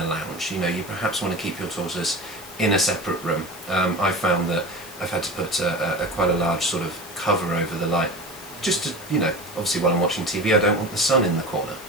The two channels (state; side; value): noise; right; hiss, 19 dB below the sound